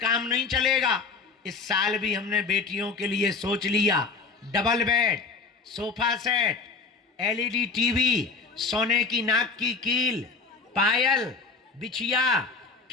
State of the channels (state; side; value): quieter; right; 4.4 dB